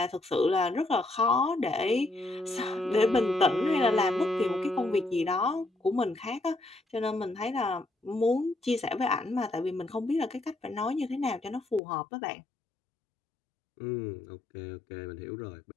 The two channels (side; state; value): right; drops out; at 11.8 s